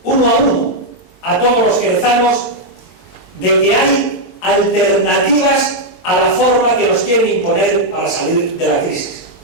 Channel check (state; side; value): late; right; 22 ms